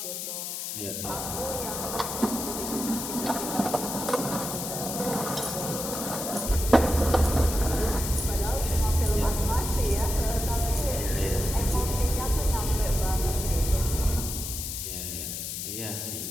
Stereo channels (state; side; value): noise; left; hiss, 5 dB below the sound